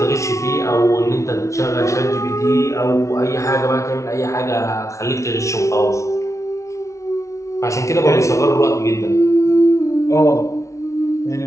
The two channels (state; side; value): late; right; 0.14 ms